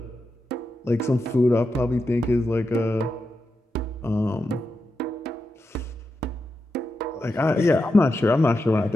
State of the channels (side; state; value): both; normal; correlation 0.88